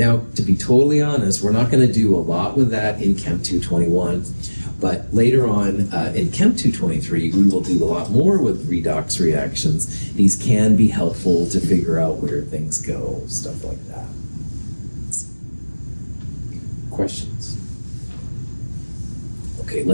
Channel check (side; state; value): both; inverted; correlation -1.00